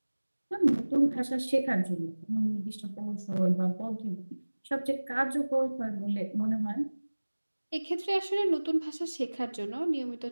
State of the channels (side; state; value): both; inverted; correlation -1.00